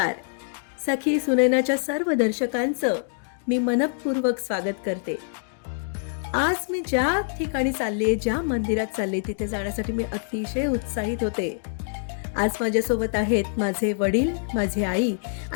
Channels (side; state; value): right; silent; digital silence